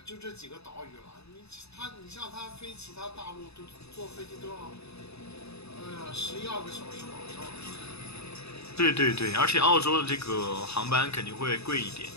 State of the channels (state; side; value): late; right; 0.79 ms